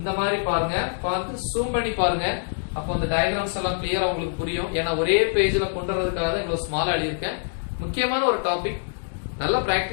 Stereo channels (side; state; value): right; silent; digital silence